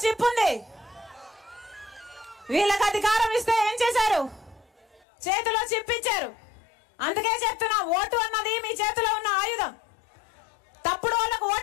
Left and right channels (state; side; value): drops out; right; at 5.1 s